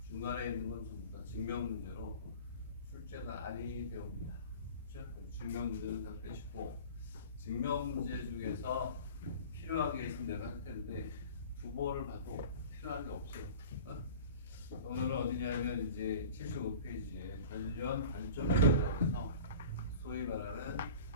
중간에 있는 건 전부 다 증명 문제로 출제는 아니 되옵니다. 그렇죠? 증명 문제는 다 빼시고 증명 문제 중에서 필요한 게 있으면 내가 할 텐데 두 번을 봐도 필요한 게 없어요. 오늘은 어디냐면 이제 75페이지에 관련 발전에 대해서 소위 말하는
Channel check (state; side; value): inverted; both; correlation -0.39